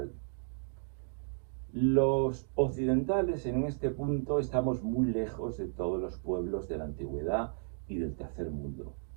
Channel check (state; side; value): silent; left; 55 dB below the other